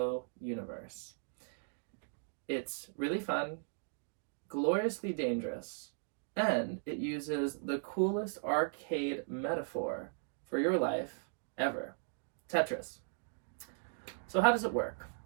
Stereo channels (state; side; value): silent; left; digital silence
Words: It's really fun, gloriously dangerous, and it uses the coolest arcade metaphor for your life ever, Tetris. So how does it work?